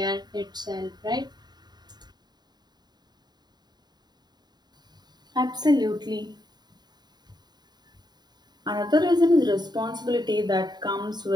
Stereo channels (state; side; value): late; left; 0.20 ms